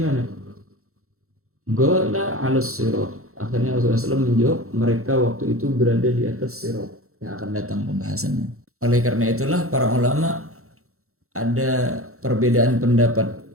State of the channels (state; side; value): late; left; 0.63 ms